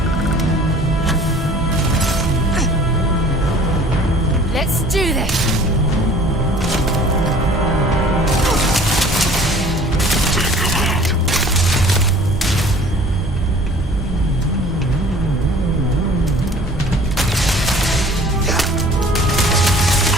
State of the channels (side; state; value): both; normal; correlation 0.50